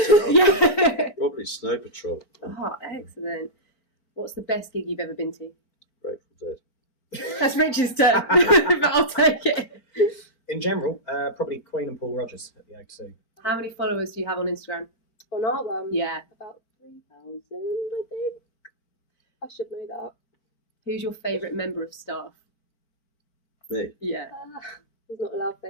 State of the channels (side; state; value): right; late; 4.5 ms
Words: turn. Yeah. Probably Snow Patrol. Oh, excellent. What's the best gig you've ever been to? Grateful Dead. That's Rich's turn, but I'll take it. In general, probably Queen and Paul Rogers at the O2. How many followers do you have on Instagram? On our one? Yeah. About 3,000, I think. I should know that. Who's your favourite member of staff? Me. Yeah. He's not a loud